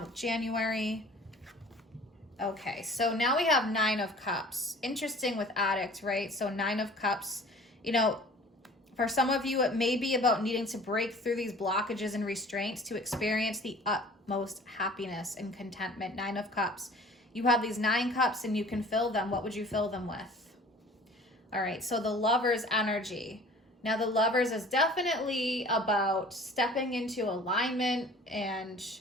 with January. Okay, so now we have 9 of Cups. Interesting with Addict, right? So 9 of Cups, you know, for some of you, it may be about needing to break through these blockages and restraints to experience the utmost happiness and contentment. 9 of Cups. You have these 9 cups and you can fill them. What would you fill them with? All right, so the Lover's energy. Now, the Lovers is definitely about stepping into alignment and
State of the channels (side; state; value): both; normal; correlation 0.47